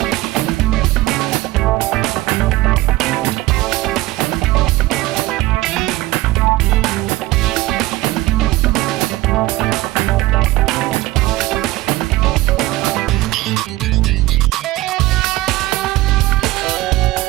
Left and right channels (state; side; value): quieter; left; 18.4 dB